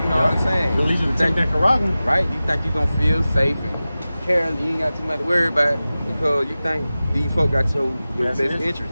know what I'm saying? It'll lead you to take that Karagma. Right? You think you gonna feel safe and careless, you ain't got too much to worry about because you think these folk got your best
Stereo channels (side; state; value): both; inverted; correlation -0.96